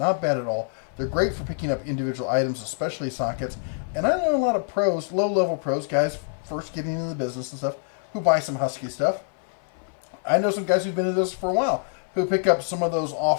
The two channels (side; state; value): right; silent; 60 dB below the other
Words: bad at all. They're great for picking up individual items, especially sockets. And I know a lot of pros, low-level pros, guys first getting into the business and stuff, who buy some Husky stuff. I know some guys who've been in this for a while who pick up some of those